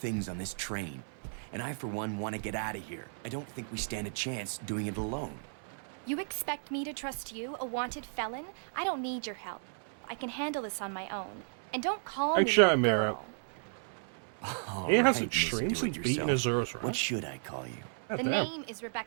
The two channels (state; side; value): silent; left; 55 dB below the other